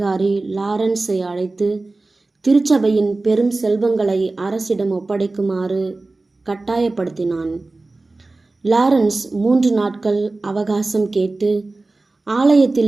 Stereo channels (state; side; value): quieter; left; 3.3 dB